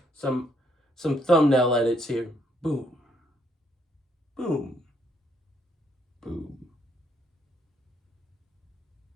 some thumbnail edits here. Boom. Boom. Boom.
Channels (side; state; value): both; normal; correlation 0.70